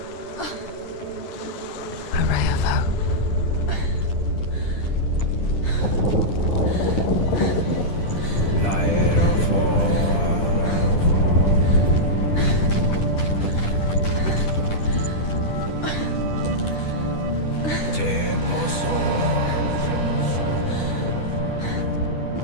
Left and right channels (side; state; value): right; late; 10 ms